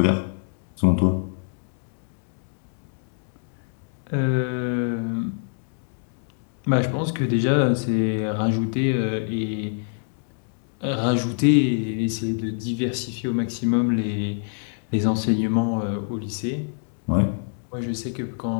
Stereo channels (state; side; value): silent; right; digital silence